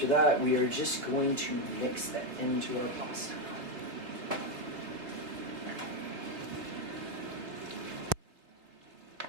that, we are just going to mix that into our pasta.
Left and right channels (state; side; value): late; left; 3.5 ms